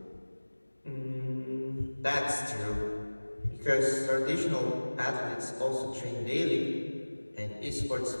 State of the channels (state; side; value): inverted; both; correlation -1.00